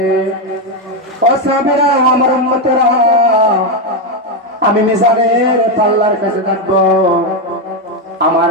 ও সাহাবীরা আমার উম্মতেরা আমি মিজানের পাল্লার কাছে থাকবো আমার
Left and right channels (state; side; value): normal; both; correlation 0.06